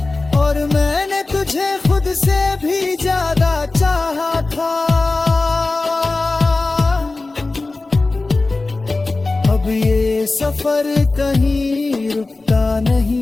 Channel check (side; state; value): right; quieter; 3.4 dB